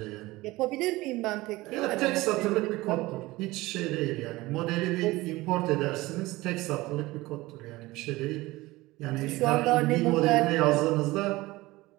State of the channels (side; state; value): left; quieter; 19.7 dB